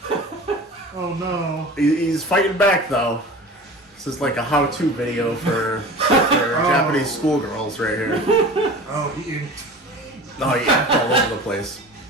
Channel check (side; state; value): both; normal; correlation 0.37